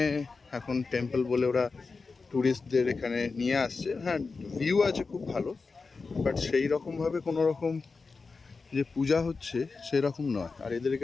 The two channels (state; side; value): quieter; right; 4.3 dB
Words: এখন টেম্পল বলে ওরা ট্যুরিস্টদের এখানে নিয়ে আসছে। হ্যাঁ, ভিউ আছে খুব ভালো, বাট সেই রকমভাবে কোনো রকম যে পূজা হচ্ছে সেরকম নয়। আর এদের